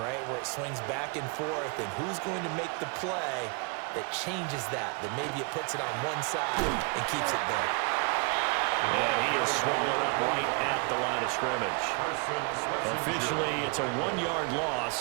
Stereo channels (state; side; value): quieter; left; 32.8 dB